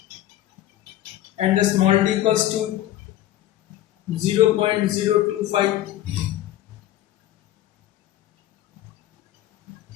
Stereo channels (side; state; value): right; quieter; 13.8 dB